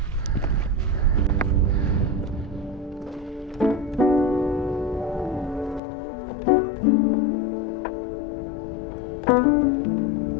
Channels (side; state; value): right; drops out; at 5.8 s